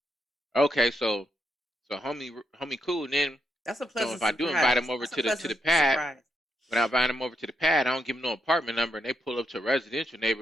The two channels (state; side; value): normal; both; correlation 0.80